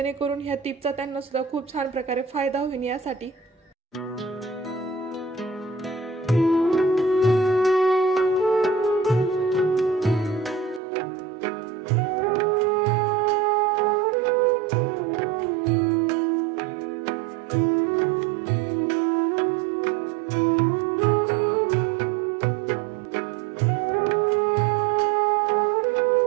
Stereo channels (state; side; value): drops out; left; at 10.8 s